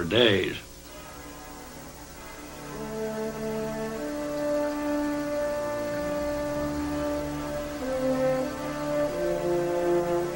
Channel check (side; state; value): both; identical; correlation 1.00